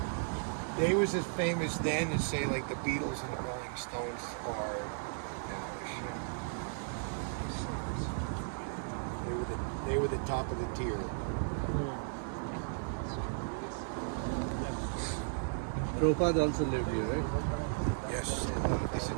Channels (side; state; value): left; silent; digital silence